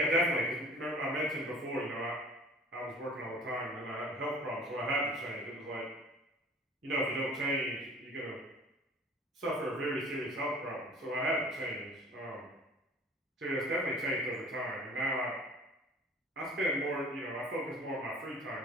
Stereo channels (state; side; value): normal; both; correlation 0.48